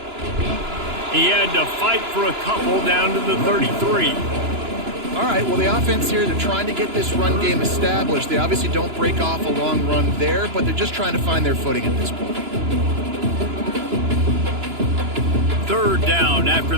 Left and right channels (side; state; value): left; late; 2.9 ms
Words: He had to fight for a couple down to the 33. All right, well, the offense here, they're trying to get this run game established. They obviously don't break off a long run there, but they're just trying to find their footing at this point. 3rd down after